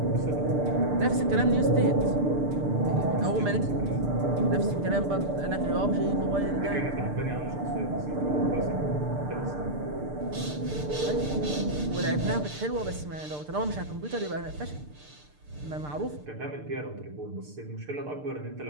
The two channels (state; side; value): late; left; 6.7 ms